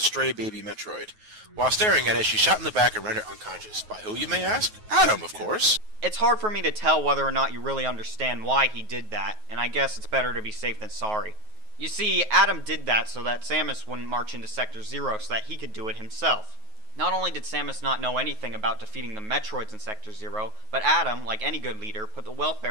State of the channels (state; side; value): late; left; 9.4 ms